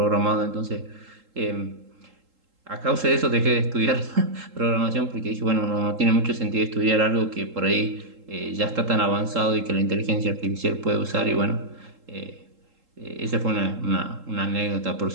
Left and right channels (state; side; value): late; left; 3.8 ms